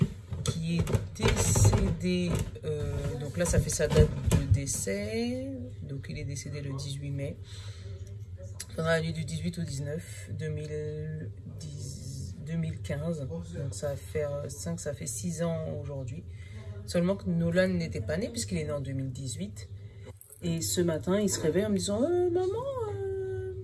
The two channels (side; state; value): both; identical; correlation 1.00